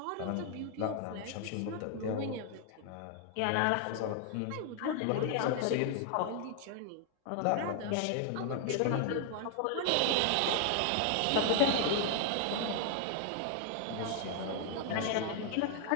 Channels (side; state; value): both; different; correlation 0.00